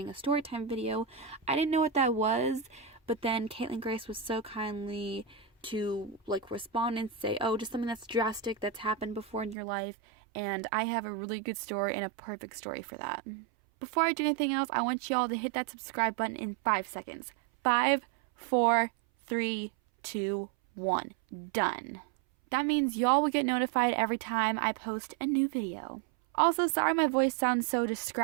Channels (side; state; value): left; drops out; at 9.6 s